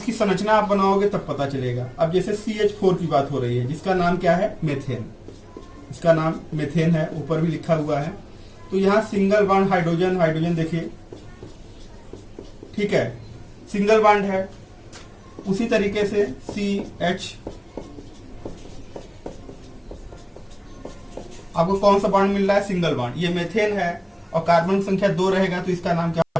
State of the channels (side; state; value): both; identical; correlation 1.00